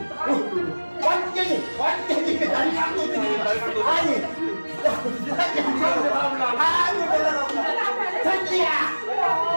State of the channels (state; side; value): inverted; both; correlation -1.00